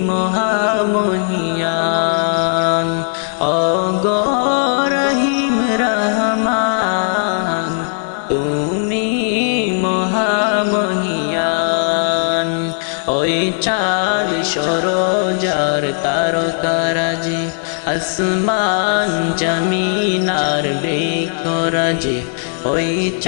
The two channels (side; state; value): right; silent; digital silence